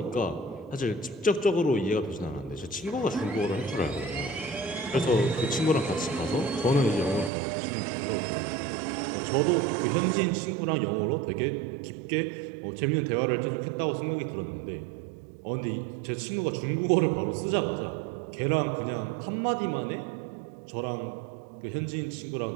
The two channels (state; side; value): drops out; left; at 7.3 s